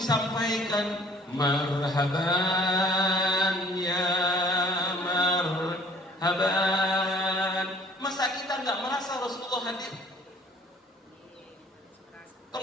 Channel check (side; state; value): both; normal; correlation 0.54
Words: marhaban ya marhaban, masa kita nggak merasa Rasulullah hadir?